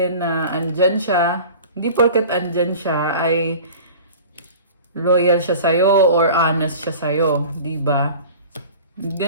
na andyan siya. Hindi porket andyan siya ay loyal siya sa'yo or honest siya sa'yo. Diba?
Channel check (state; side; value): inverted; both; correlation -0.40